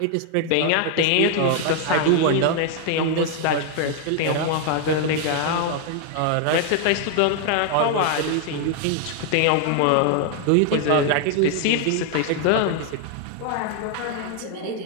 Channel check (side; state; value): both; different; correlation 0.00